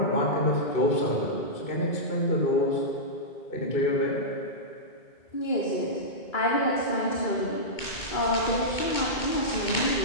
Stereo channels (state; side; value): late; right; 2.2 ms